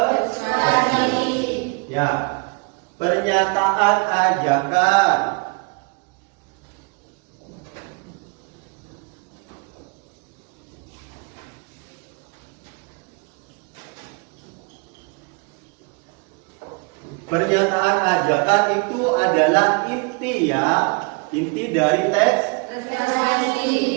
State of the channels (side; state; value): left; quieter; 32.6 dB